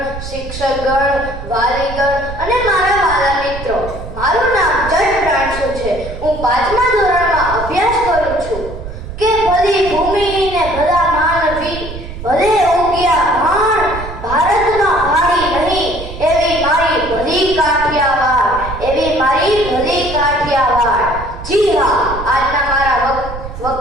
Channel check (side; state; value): right; noise; rumble, 10 dB below the sound